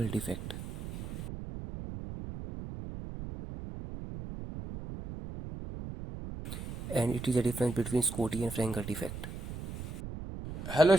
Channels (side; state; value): right; noise; rumble, 8 dB below the sound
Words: defect. And it is a difference between Scotty and Frankel defect. Hello